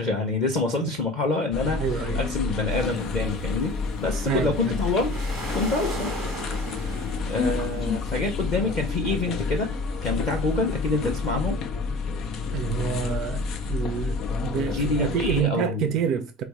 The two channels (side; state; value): both; normal; correlation 0.41